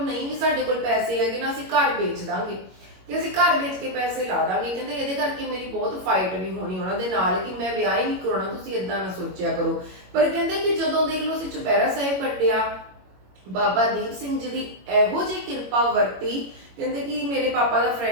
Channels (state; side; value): late; left; 21 ms